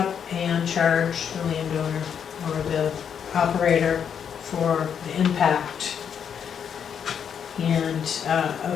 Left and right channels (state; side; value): quieter; right; 7.8 dB